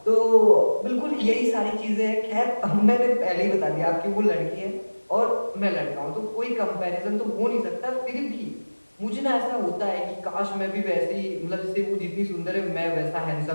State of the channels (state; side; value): inverted; both; correlation -1.00